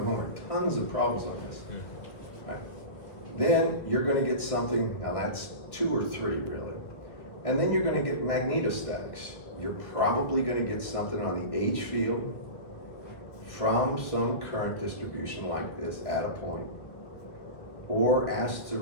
homework, tons of problems on this. Right. Then you're going to get something, now that's 2 or 3 really, and then you're going to get magnetostatics. You're probably going to get something on the H field from some current distribution like this at a point, or asked to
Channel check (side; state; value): right; late; 1.5 ms